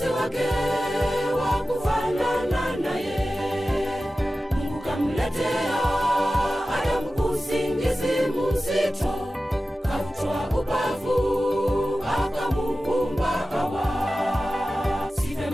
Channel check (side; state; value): both; normal; correlation 0.95